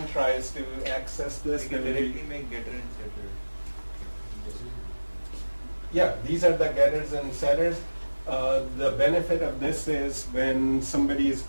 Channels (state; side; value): inverted; both; correlation -1.00